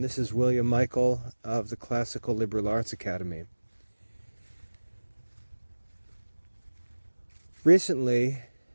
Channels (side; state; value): both; inverted; correlation -1.00